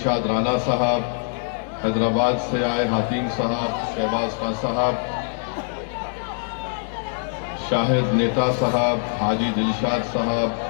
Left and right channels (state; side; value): silent; right; 63 dB below the other